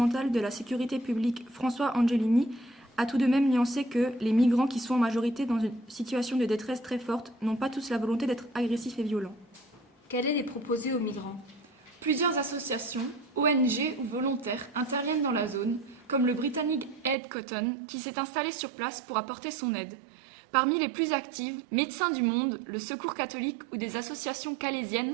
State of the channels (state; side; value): drops out; left; at 17.2 s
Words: de la sécurité publique, François Angelini, a tout de même nuancé que les migrants qui sont en majorité dans une situation de détresse très forte n'ont pas tous la volonté d'être agressifs et violents. Quelle est les proposée aux migrants ? Plusieurs associations, ONG ou volontaires interviennent dans la zone, comme le britannique Ed Cotton, qui s'est installé sur place pour apporter son aide. Parmi les plus actives, Médecins du Monde, le Secours catholique ou des associations